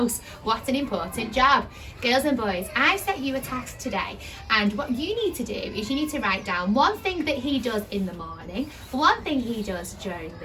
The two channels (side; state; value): both; identical; correlation 1.00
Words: What an important job. Girls and boys, I've set you a task today, and what you need to do is you need to write down one thing that he does in the morning, one thing he does during